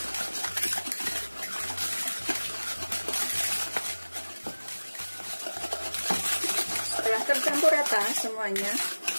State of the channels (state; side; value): inverted; both; correlation -1.00